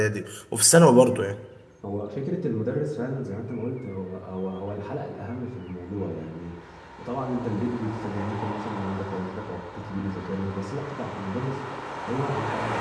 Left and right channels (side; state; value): both; identical; correlation 1.00